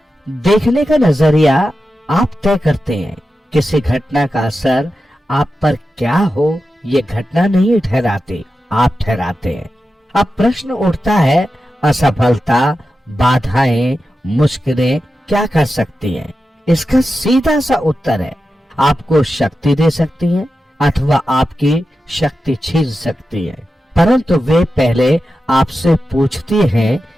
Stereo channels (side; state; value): both; normal; correlation 0.91